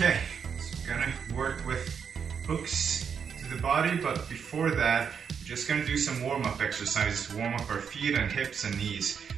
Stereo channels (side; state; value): left; quieter; 6.9 dB